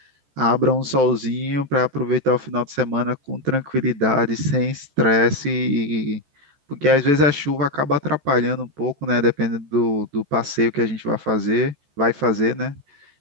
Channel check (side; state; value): left; late; 14 ms